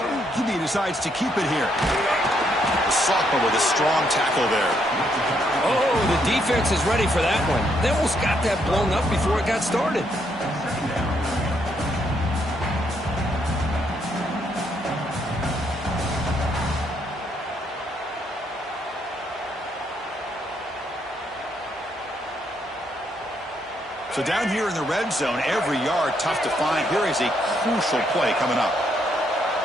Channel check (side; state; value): both; normal; correlation 0.74